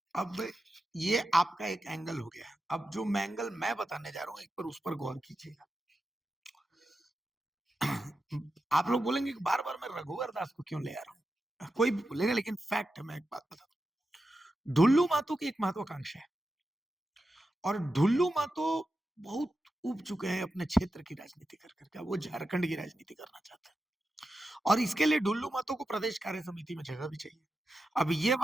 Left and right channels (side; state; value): both; normal; correlation 0.90